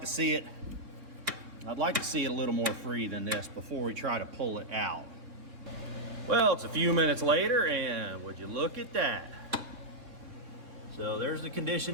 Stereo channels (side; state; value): left; late; 3.9 ms